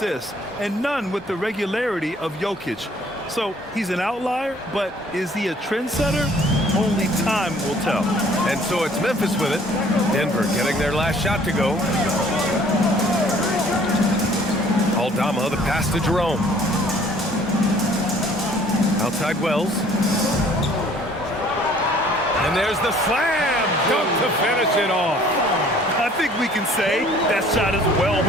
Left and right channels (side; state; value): both; normal; correlation 0.56